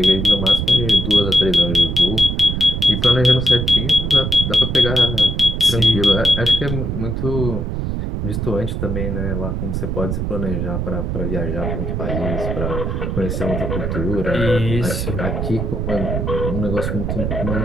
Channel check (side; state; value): right; noise; rumble, 2 dB below the sound